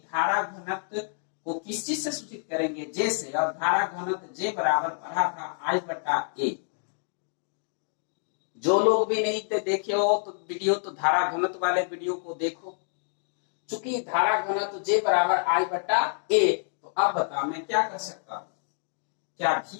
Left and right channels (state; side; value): silent; right; 60 dB below the other